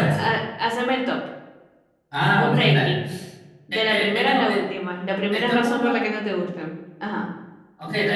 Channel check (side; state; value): both; identical; correlation 1.00